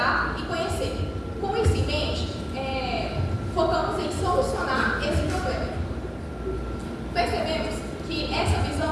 e conhecer. Com isso em mente, focamos em solucionar esse problema. Percebemos que essa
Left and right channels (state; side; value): identical; both; correlation 1.00